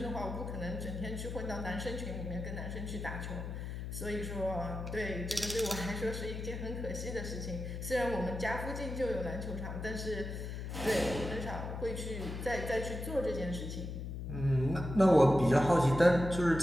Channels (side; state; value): left; noise; hum, 6 dB below the sound